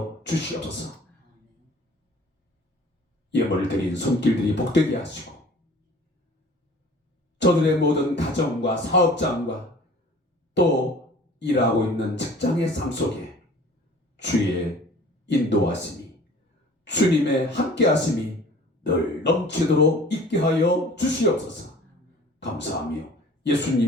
주시옵소서. 예물을 드린 손길들이 복되게 하시고 저들의 모든 가정과 사업장과 또 일하고 있는 직장의 삶 속에 주의 인도하심이, 주님의 함께하심이 늘 넘치도록 있게 하여 주시옵소서. 감사하며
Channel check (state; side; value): normal; both; correlation 0.47